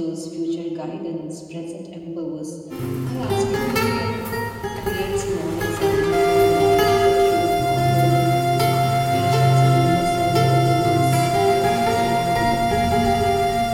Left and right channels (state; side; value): identical; both; correlation 1.00